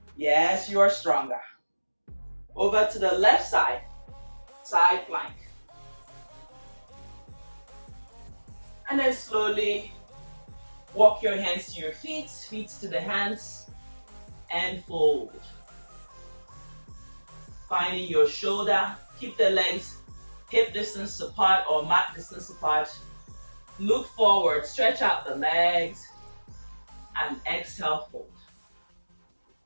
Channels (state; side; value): inverted; both; correlation -1.00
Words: Yes, you are stronger. Over to the left side, side plank. And then slowly walk your hands to your feet, feet to the hands, and fold. Finding your shoulder, keep the legs hip distance apart or mat distance apart. Look forward, stretch out the legs, and exhale, fold.